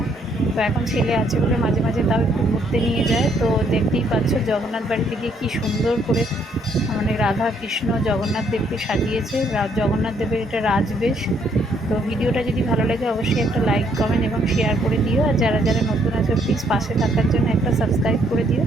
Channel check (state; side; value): normal; both; correlation 0.69